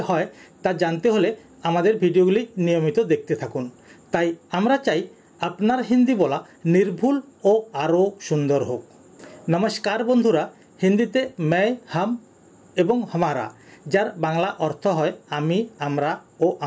হয় তা জানতে হলে আমাদের ভিডিওগুলি নিয়মিত দেখতে থাকুন। তাই আমরা চাই আপনার হিন্দি বলা নির্ভুল ও আরও সুন্দর হোক। নমস্কার বন্ধুরা, হিন্দিতে मैं हम এবং हमारा যার বাংলা অর্থ হয় আমি আমরা ও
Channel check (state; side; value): identical; both; correlation 1.00